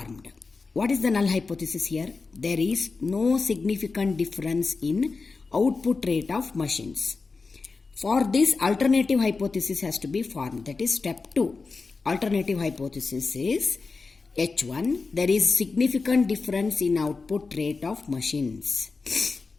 What is the null hypothesis here? There is no significant difference in output rate of machines. For this, alternative hypothesis has to be formed. That is step 2. Alternative hypothesis is H1. There is significant difference in output rate of machines.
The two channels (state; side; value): quieter; right; 4.2 dB